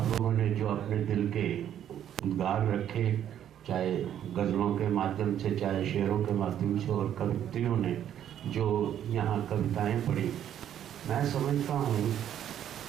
लोगों ने जो अपने दिल के उद्गार रखे, चाहे गज़लों के माध्यम से, चाहे शेरों के माध्यम से, और कवित्रियों ने जो यहाँ कविताएं पढ़ी, मैं समझता हूँ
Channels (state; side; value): quieter; left; 10.3 dB